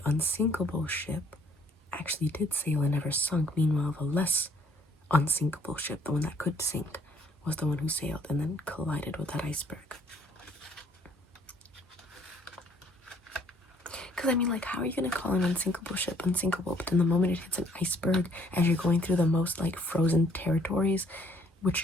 unsinkable ship actually did sail and never sunk. Meanwhile, the less unsinkable ship, the one that could sink, was the one who sailed and then collided with that iceberg. Because, I mean, like, how are you going to call an unsinkable ship unsinkable, but then the moment it hits an iceberg, as you're going through the most, like, frozen territories,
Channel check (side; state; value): both; normal; correlation 0.63